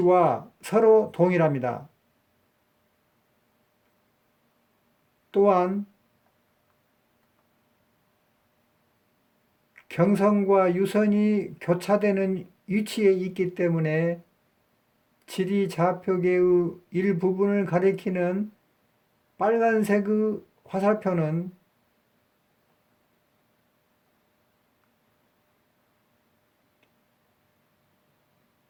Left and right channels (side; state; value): both; identical; correlation 1.00